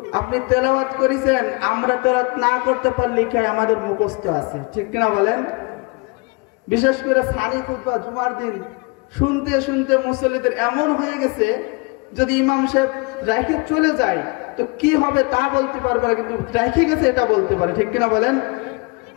আপনি তেলাওয়াত করেছেন, আমরা তেলাওয়াত না করতে পারলে কি আমাদের মুখস্থ আছে, ঠিক কিনা বলেন? বিশেষ করে সানি খুতবা জুমার দিন শুনতে শুনতে মুসল্লিদের এমন হয়ে গেছে, যদি ইমাম সাহেব রাইখে চলে যায় তো কি হবে তা বলতে পারবে না, কিন্তু রাইখে গেছে এটা বলতে পারে, ঠিক কিনা বলেন?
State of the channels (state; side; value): quieter; right; 28.4 dB